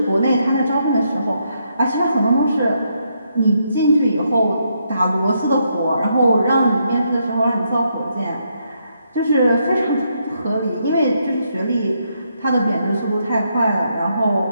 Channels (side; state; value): both; inverted; correlation -0.78